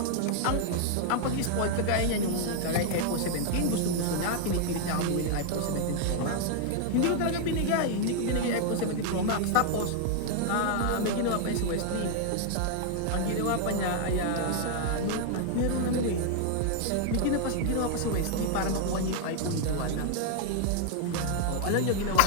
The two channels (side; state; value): both; different; correlation 0.00